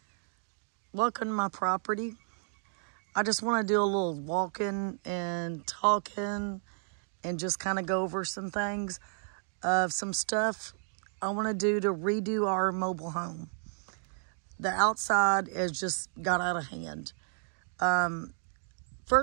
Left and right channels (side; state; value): left; silent; digital silence